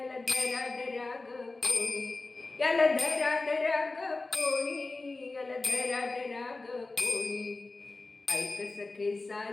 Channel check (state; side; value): quieter; right; 3.4 dB